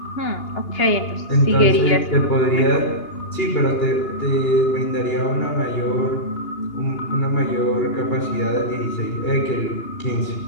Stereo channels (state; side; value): late; right; 2.8 ms